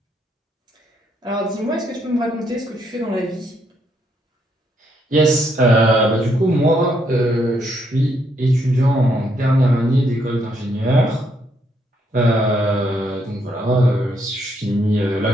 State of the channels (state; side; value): normal; both; correlation 0.74